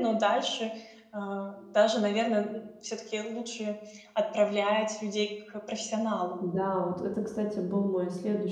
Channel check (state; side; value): identical; both; correlation 1.00